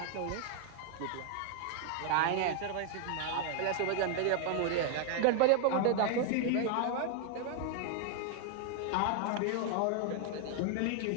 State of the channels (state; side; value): different; both; correlation 0.00